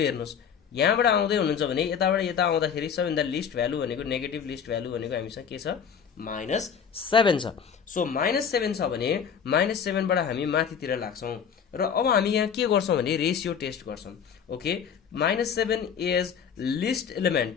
हेर्नुहोस्। यहाँबाट आउँदै हुनुहुन्छ भने यताबाट यता आउँदाखेरि सबैभन्दा लिस्ट भ्यालु भनेको नेगेटिभ लिस्ट भ्यालु भनेको हामीसँग के छ? -7 छ। सो -7 छ भने -7बाट हामी माथितिर लाग्छौँ र अब हामी यहाँ के गर्छौँ भने रेसियो टेस्ट गर्छौँ। Okay, -7 is list element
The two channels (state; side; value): quieter; right; 7.3 dB